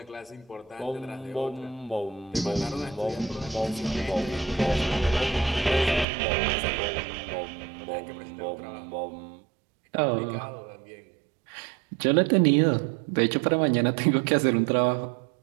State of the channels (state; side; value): drops out; left; at 6.1 s